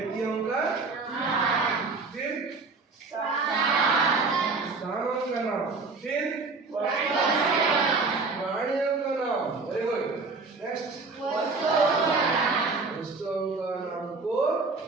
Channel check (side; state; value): left; quieter; 4.1 dB